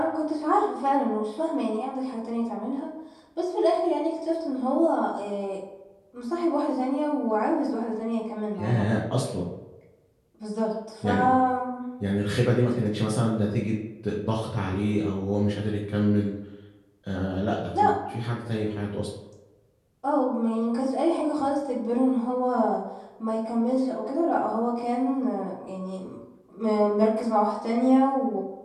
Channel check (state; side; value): identical; both; correlation 1.00